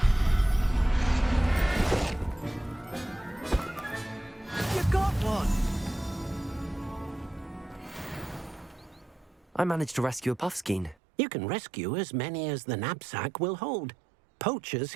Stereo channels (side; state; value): left; drops out; at 11.0 s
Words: I managed to rescue a puffskein. You can rescue as many as the knapsack will hold. Poachers